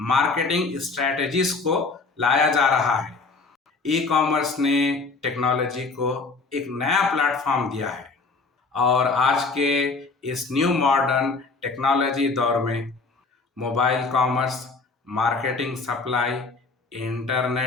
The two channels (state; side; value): quieter; right; 4.1 dB